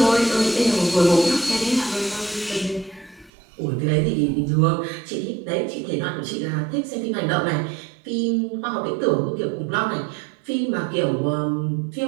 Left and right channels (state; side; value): drops out; left; at 3.3 s